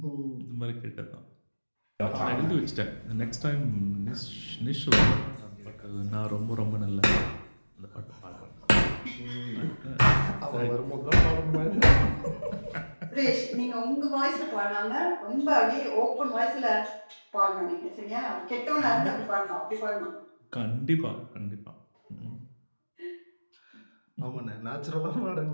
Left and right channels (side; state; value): both; inverted; correlation -1.00